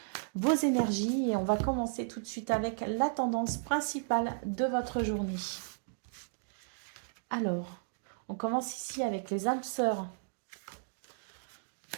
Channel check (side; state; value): left; silent; digital silence